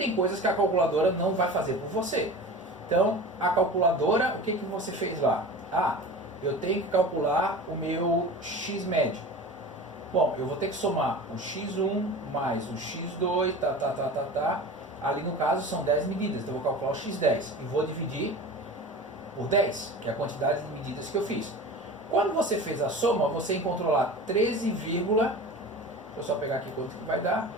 coisas que a calculadora não vai fazer por você. Então, a calculadora, o que você fez lá? Ah, eu tenho que calcular o meu x médio. Bom, eu vou ter que somar o x1 mais o x2, Ali no caso são 10 medidas, então eu vou calcular o x10 e vou dividir por 10, que é a quantidade de medidas que eu fiz. Quando você fez a soma, você encontrou lá 13, deixa eu só pegar aqui quanto que vai dar,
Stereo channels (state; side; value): normal; both; correlation 0.35